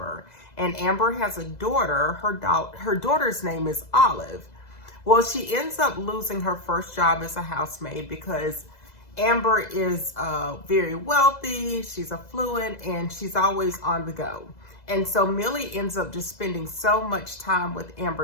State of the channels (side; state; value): right; late; 2.0 ms